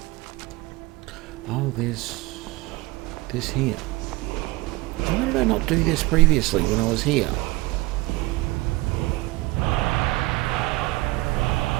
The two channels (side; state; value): left; quieter; 20.8 dB